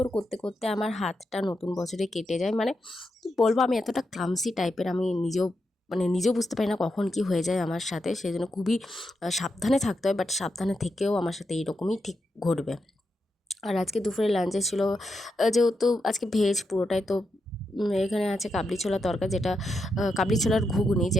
করতে করতে আমার হাতটা নতুন বছরে কেটে যায়। মানে কি বলবো, আমি এতটা ক্লামসি টাইপের, আমি নিজেও বুঝতে পারি না কখন কি হয়ে যায় আমার সাথে। সেই জন্য খুবই সাবধানে থাকতে হয়, বাট সাবধানে থেকেও আমার সাথে এইরকমই ঠিক ঘটবে। আর আজকে দুপুরে লাঞ্চে ছিল যেহেতু আজকে ভেজ পুরোটাই, তো এখানে আছে কাবলি ছোলা তরকা, যেটা কাবলি ছোলার ঘুগনি,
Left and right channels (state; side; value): normal; both; correlation 0.85